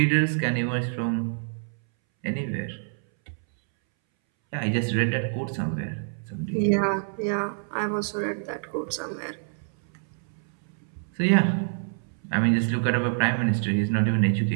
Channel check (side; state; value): left; silent; 61 dB below the other